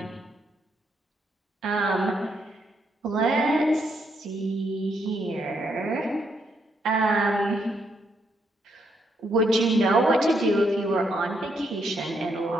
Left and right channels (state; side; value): normal; both; correlation 0.76